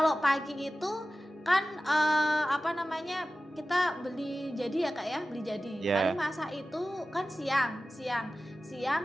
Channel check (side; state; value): both; normal; correlation 0.95